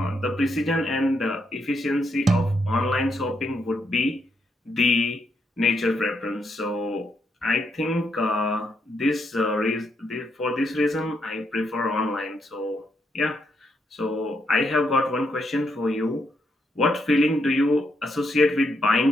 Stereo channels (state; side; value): normal; both; correlation 0.78